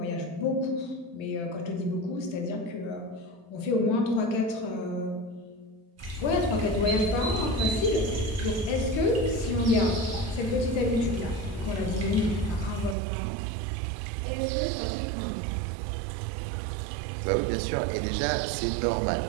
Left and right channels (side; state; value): left; drops out; at 13.0 s